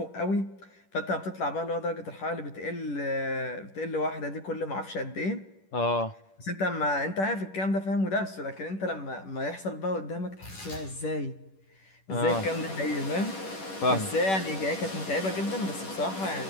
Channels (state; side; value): late; right; 10 ms